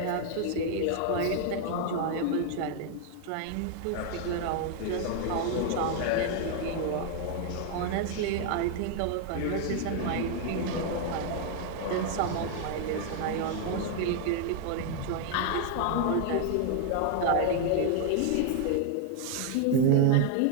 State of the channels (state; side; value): different; both; correlation 0.00